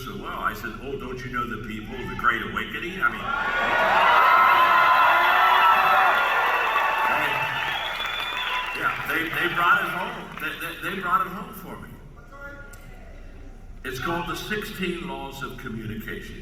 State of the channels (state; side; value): identical; both; correlation 1.00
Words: well? I said, oh, don't you know the people, the Great Awakening? They brought it home. They brought it home for me. It's called The 16 Laws of